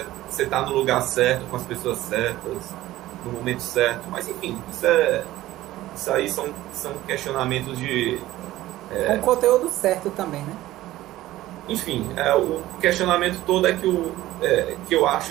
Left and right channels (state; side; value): quieter; left; 15.8 dB